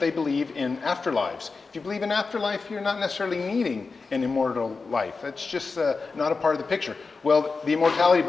believe in afterlives. If you believe in afterlife, you're not necessarily needing an immortal life. It's just not a part of the picture. Well, the Immortality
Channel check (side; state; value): right; quieter; 4.3 dB